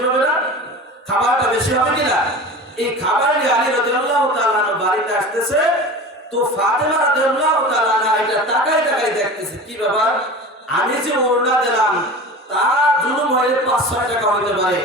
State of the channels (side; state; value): both; normal; correlation 0.34